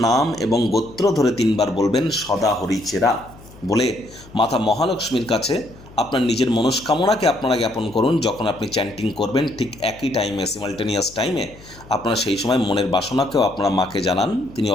নাম এবং গোত্র ধরে 3 বার বলবেন সদা হরিচেরা বলে মাতা মহালক্ষ্মীর কাছে আপনার নিজের মনস্কামনাকে আপনারা জ্ঞাপন করুন। যখন আপনি চ্যান্টিং করবেন ঠিক একই টাইমে, সিমালটেনিয়াস টাইমে, আপনারা সেই সময় মনের বাসনাকেও আপনারা মাকে জানান, তিনি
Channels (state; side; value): noise; left; hum, 21 dB below the sound